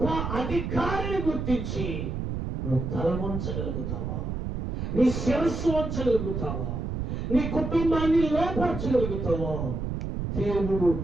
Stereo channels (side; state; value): right; noise; rumble, 3 dB below the sound